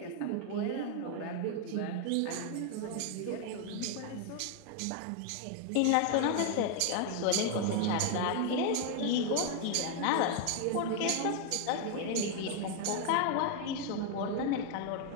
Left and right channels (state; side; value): different; both; correlation 0.00